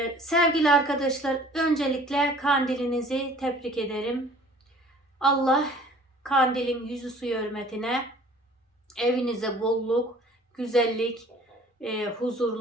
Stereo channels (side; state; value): both; normal; correlation 0.50